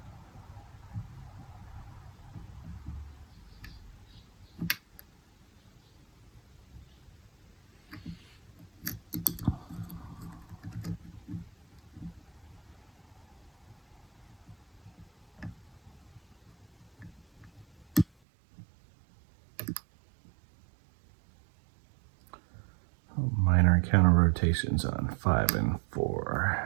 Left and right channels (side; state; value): left; drops out; at 18.1 s